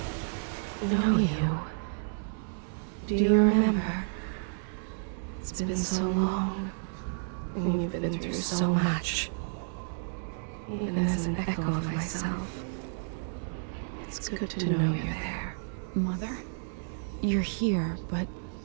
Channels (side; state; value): left; silent; digital silence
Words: know you. Do you remember? It's been so long, and you've been through so much. Even as an echo of myself, it's good to know you're there. Mother? You're here, but